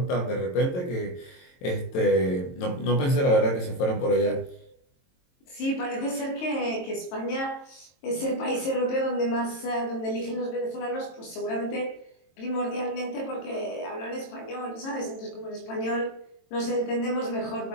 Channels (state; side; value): late; right; 22 ms